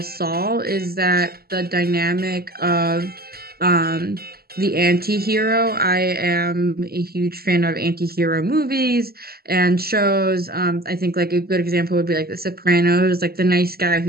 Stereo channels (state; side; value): late; left; 0.45 ms